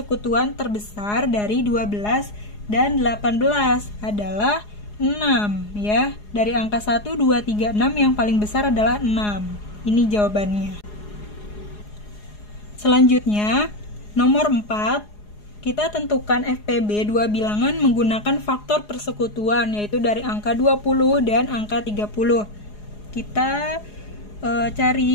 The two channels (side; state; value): right; late; 4.8 ms